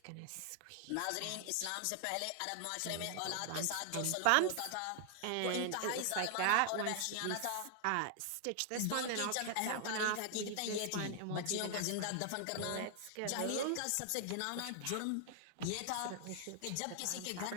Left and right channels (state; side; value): different; both; correlation 0.00